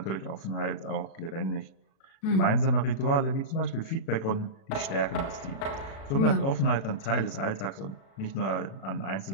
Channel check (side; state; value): right; late; 36 ms